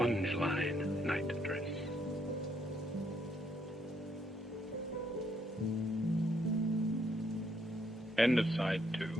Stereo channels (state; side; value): normal; both; correlation 0.72